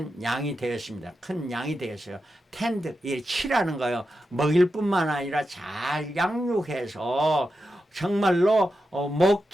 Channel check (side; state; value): both; normal; correlation 0.89